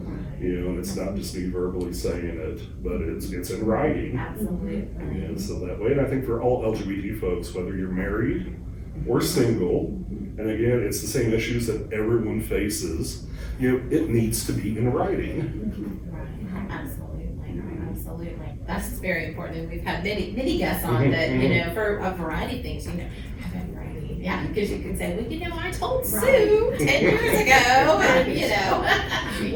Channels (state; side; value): identical; both; correlation 1.00